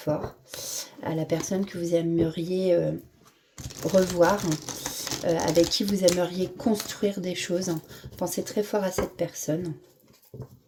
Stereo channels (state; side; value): identical; both; correlation 1.00